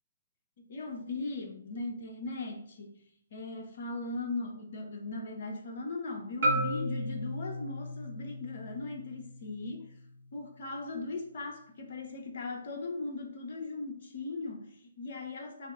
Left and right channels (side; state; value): both; inverted; correlation -0.64